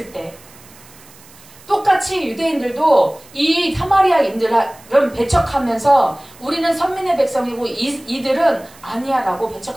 때. 똑같이 유대인들도 이 사마리아인들은 배척하면서 우리는 선민의 백성이고 이들은 아니야 라고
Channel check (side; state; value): right; noise; hiss, 24 dB below the sound